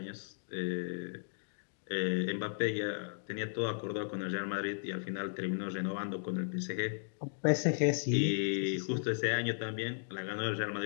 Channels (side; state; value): right; silent; digital silence